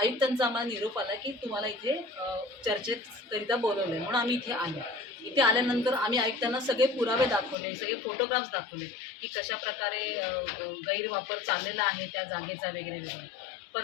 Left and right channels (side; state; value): right; drops out; at 7.6 s